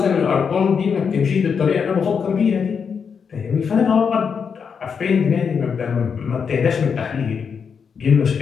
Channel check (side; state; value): right; quieter; 6.4 dB